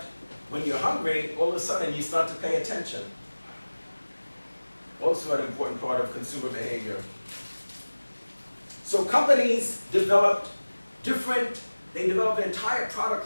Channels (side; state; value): both; inverted; correlation -1.00